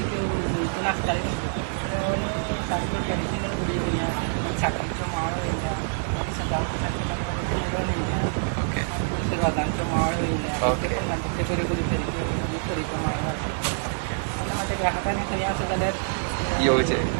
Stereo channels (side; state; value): left; silent; digital silence